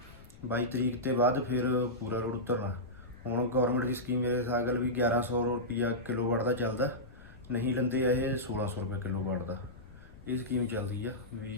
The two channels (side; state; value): left; noise; rumble, 21 dB below the sound